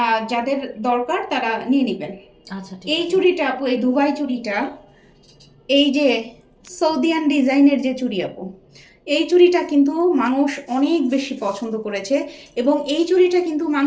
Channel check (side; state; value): both; identical; correlation 1.00